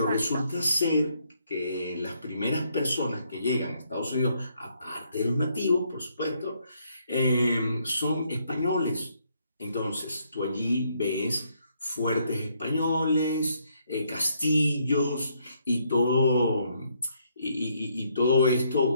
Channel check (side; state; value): both; inverted; correlation -0.72